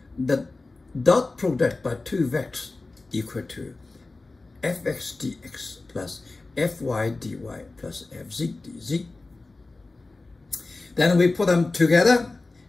the dot product by two vectors equal to fx dx plus fy dy plus fz dz. Then we put them together,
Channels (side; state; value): right; quieter; 3.3 dB